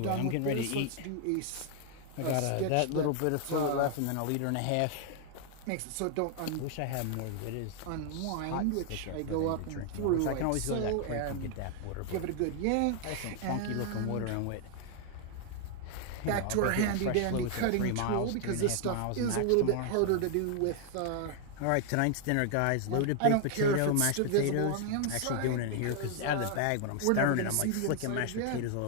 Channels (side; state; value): both; different; correlation 0.00